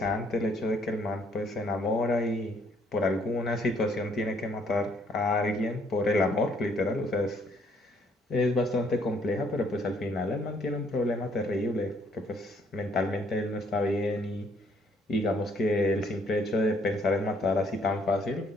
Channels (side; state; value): both; normal; correlation 0.66